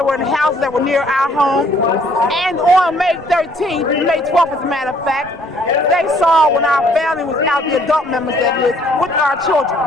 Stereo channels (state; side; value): normal; both; correlation 0.61